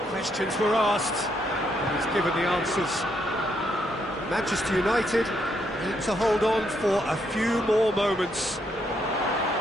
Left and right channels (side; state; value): both; normal; correlation 0.75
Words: Questions were asked, and he's given the answers. Manchester United need to hold on for a few more moments.